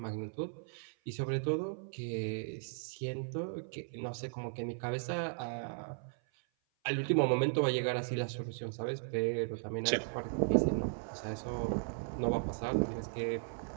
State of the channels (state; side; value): silent; left; 53 dB below the other